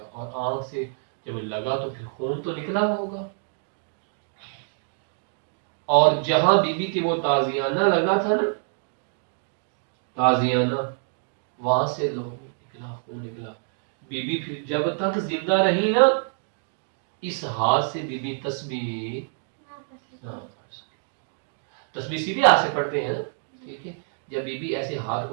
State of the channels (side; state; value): left; silent; digital silence